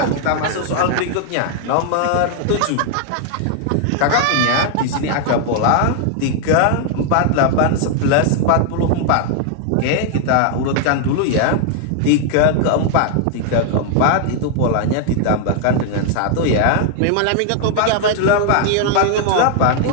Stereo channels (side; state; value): both; different; correlation 0.00